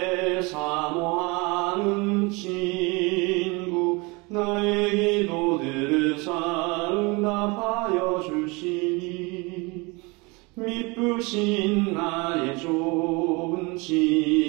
사모하는 친구, 나의 기도들을 응답하여 주시니 미쁘신 나의 좋은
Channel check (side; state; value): left; quieter; 27.1 dB